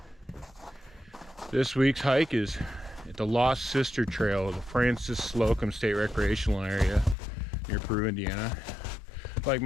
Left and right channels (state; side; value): drops out; right; at 7.2 s